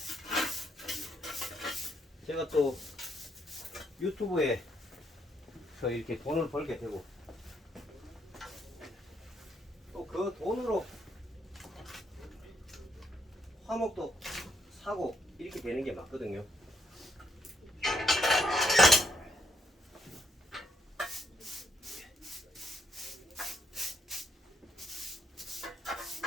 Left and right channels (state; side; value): normal; both; correlation 0.75